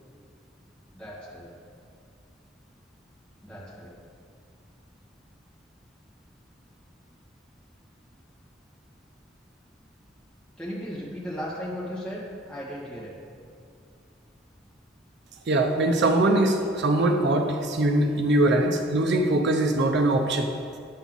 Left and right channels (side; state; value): both; normal; correlation 0.48